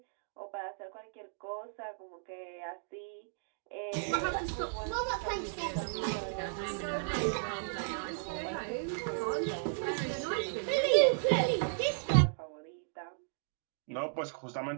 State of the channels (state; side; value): silent; left; digital silence